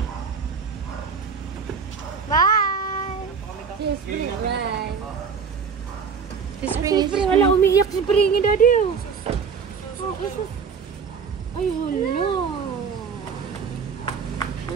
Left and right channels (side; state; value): left; quieter; 6.0 dB